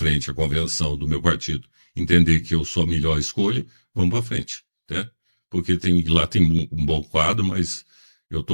a convenção do meu partido entender que eu sou a melhor escolha, vamos para frente, né? Porque lá tem um bom quadro, mas eu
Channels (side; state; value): both; inverted; correlation -1.00